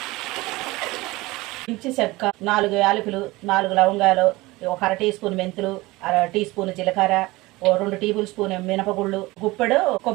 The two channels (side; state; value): left; quieter; 20.9 dB